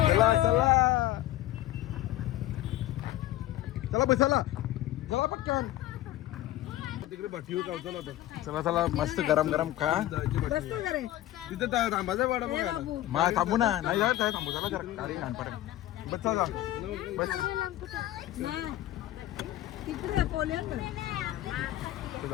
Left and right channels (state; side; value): quieter; right; 14.6 dB